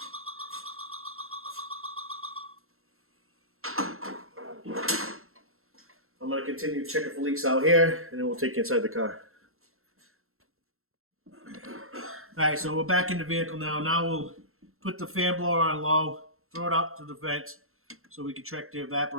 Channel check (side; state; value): left; late; 0.62 ms